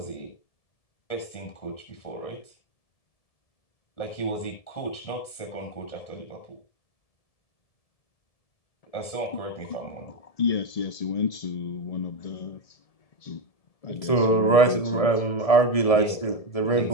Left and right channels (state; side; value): late; right; 1.7 ms